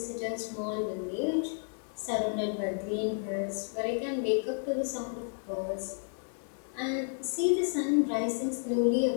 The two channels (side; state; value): right; silent; 57 dB below the other